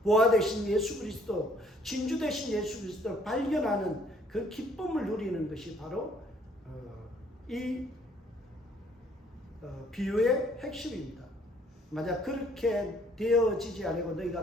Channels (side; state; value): both; normal; correlation 0.62